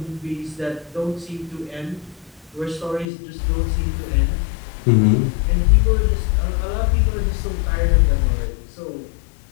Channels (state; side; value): drops out; right; at 3.1 s